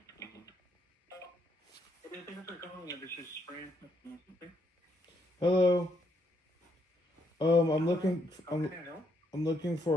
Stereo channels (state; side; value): normal; both; correlation 0.74